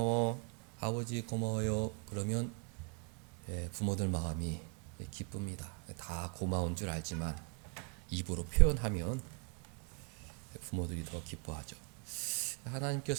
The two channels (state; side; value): quieter; left; 35.9 dB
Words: 아버지 고마워요 그러면 부모들 마음이 기쁩니다. 다 고마운 줄 알지만 입으로 표현하면 부모들이 더 기뻐하죠.